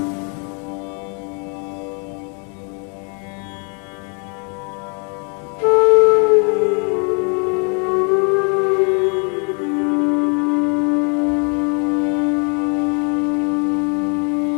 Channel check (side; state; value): right; quieter; 36.0 dB